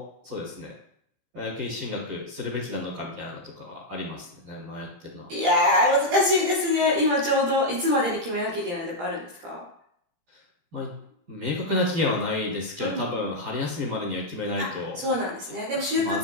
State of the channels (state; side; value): late; left; 17 ms